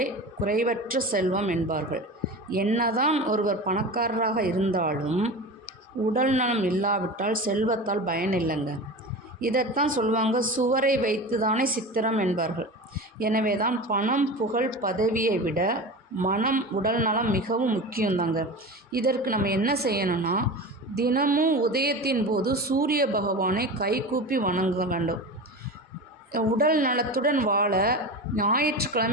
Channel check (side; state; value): both; normal; correlation 0.29